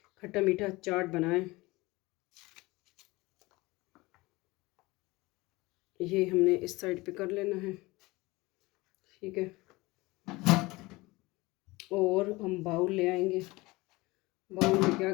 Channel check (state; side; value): quieter; right; 21.7 dB